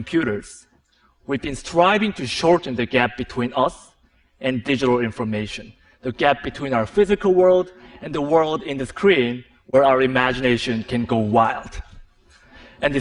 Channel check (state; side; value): identical; both; correlation 1.00